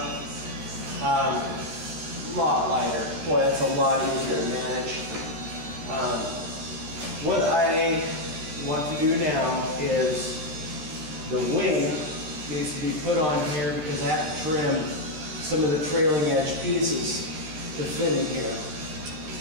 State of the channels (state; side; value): late; left; 13 ms